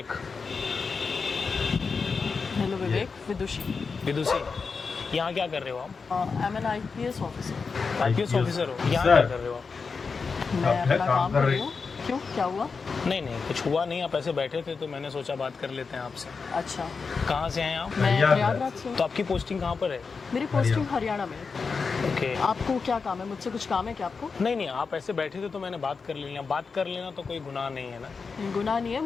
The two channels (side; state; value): right; quieter; 5.0 dB